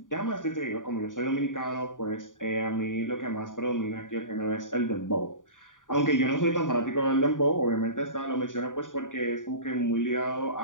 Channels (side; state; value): right; late; 0.88 ms